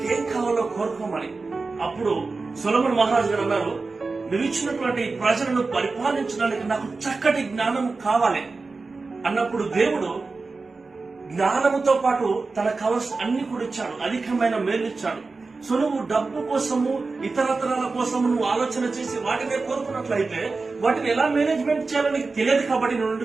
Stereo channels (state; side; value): quieter; left; 4.0 dB